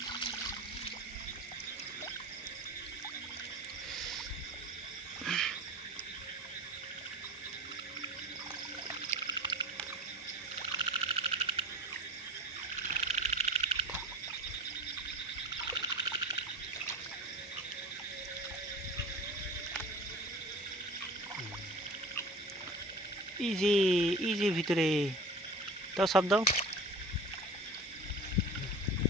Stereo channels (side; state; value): both; normal; correlation 0.36